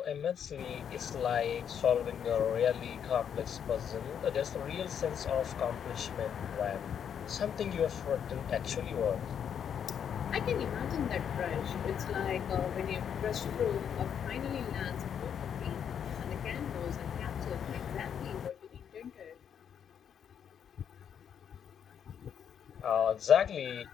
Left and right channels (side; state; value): right; quieter; 8.3 dB